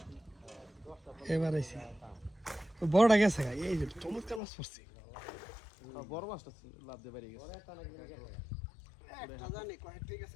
এবার আইছে বড়টা গেছে এই যে চমৎকার মাছ পড়ছে বড় মাছটা লাভ দিয়ে বেরিয়ে গেছে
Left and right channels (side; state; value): right; drops out; at 4.4 s